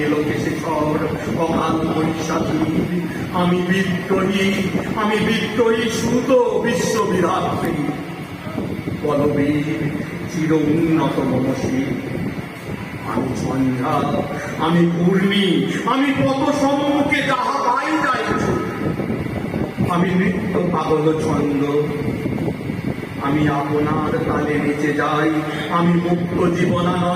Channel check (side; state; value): both; identical; correlation 1.00